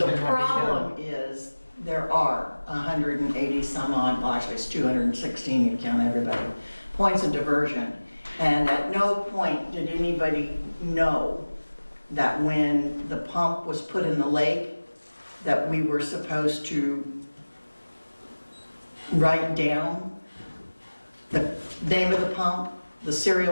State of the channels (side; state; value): both; inverted; correlation -1.00